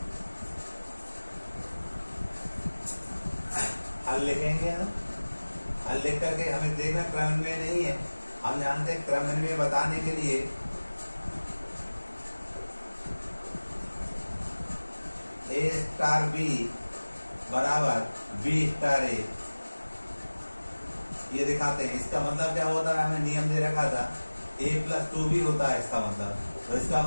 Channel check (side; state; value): both; inverted; correlation -1.00